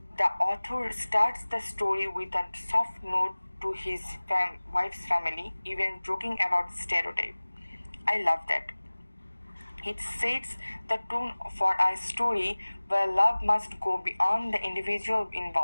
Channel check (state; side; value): inverted; both; correlation -1.00